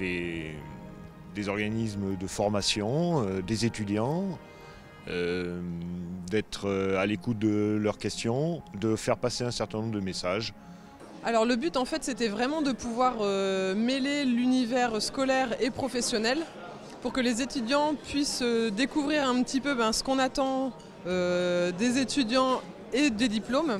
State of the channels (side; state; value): both; identical; correlation 1.00